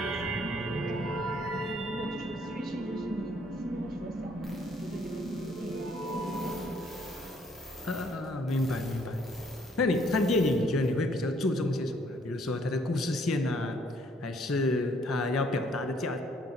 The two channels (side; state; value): both; normal; correlation 0.65